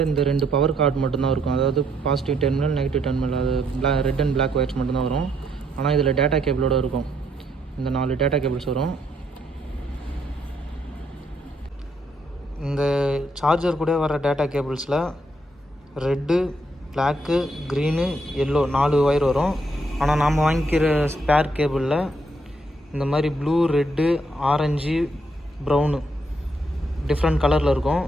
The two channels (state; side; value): normal; both; correlation 0.73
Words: இந்த 2 பவர் கார்டு மட்டும்தான் இருக்கும். அதாவது பாசிட்டிவ் டெர்மினல், நெகட்டிவ் டெர்மினல், அது ரெட் அண்ட் பிளாக் ஒயர்ஸ் மட்டும்தான் வரும். ஆனால் இதில் டேட்டா கேபிளோடு இருக்கும். இந்த 4 டேட்டா கேபிள்ஸ் வரும். இந்த சார்ஜர் கூட வர டேட்டா கேபிள்ஸில் red, black, green, yellow 4 wire வரும். ஆனால் நாம் வாங்கிக்கிற ஸ்பேர் கேபிளில் இந்த மாதிரி blue, red, orange, brown different கலரில் இருக்கும்.